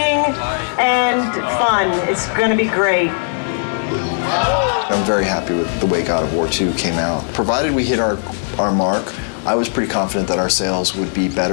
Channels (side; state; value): right; silent; 68 dB below the other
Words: and fun. It's going to be great. I'm very happy with the way God of War 2 came out. Provided we hit our mark, I was pretty confident that our sales would be